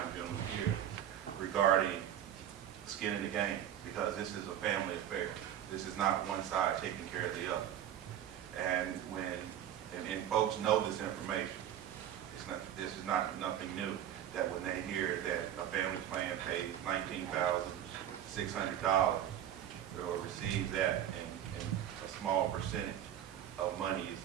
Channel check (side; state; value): left; quieter; 10.8 dB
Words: gentlemen here regarding skin in the game, because this is a family affair. This is not one side taking care of the other. And and folks know this information. This is nothing new, that when they hear that a family plan pays $19,600 or receives that, and a small percentage of money is